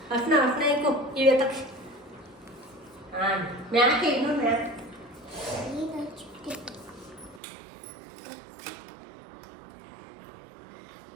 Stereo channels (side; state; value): left; drops out; at 7.4 s